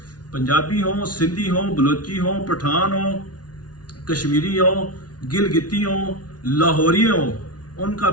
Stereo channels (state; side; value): late; right; 0.69 ms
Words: पंजाबी हो, सिंधी हो, बलोची हो, पठान हो, कश्मीरी हो, गिलगिती हो, लाहौरी हो, उनका